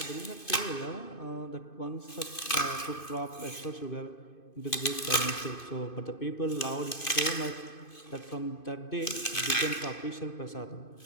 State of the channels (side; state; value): right; late; 2.5 ms